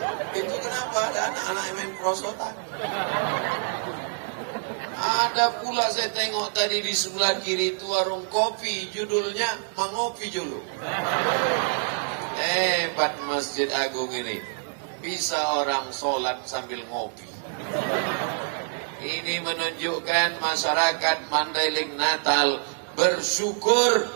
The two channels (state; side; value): silent; left; digital silence